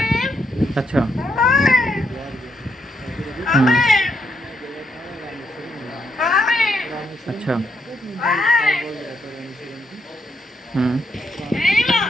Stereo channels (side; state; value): both; normal; correlation 0.77